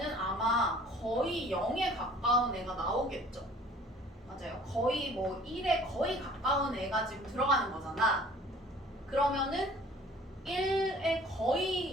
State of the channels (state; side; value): normal; both; correlation 0.51